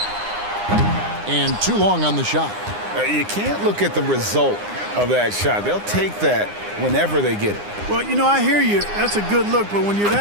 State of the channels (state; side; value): late; left; 9.8 ms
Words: And too long on the shot. You can't look at the result of that shot. They'll take that whenever they get it. Well, you know, I hear you. That's a good look, but when you're